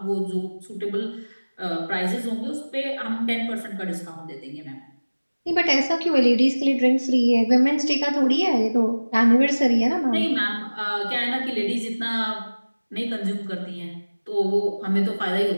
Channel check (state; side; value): inverted; both; correlation -1.00